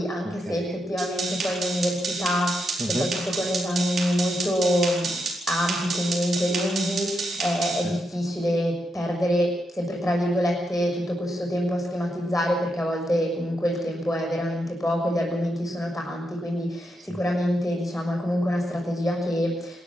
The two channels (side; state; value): both; normal; correlation 0.83